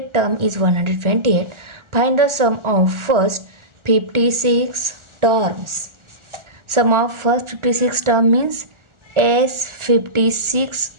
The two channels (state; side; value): late; left; 1.4 ms